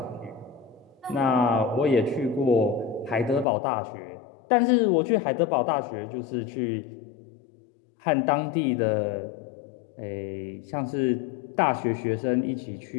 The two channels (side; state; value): right; drops out; at 3.5 s